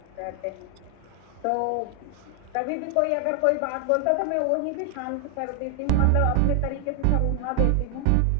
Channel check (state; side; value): different; both; correlation 0.00